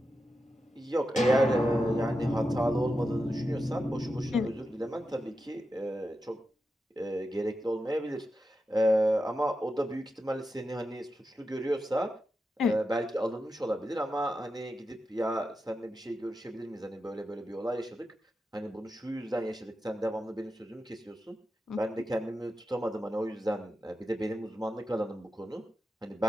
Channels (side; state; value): both; normal; correlation 0.89